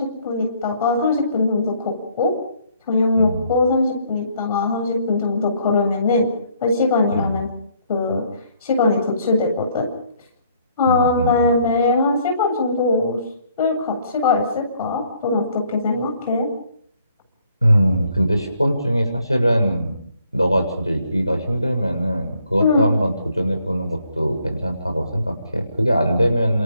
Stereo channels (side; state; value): both; inverted; correlation -0.65